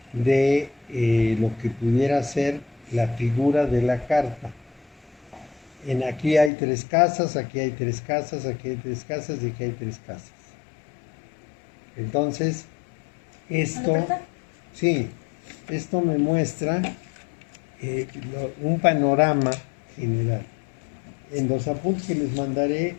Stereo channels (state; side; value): drops out; right; at 6.5 s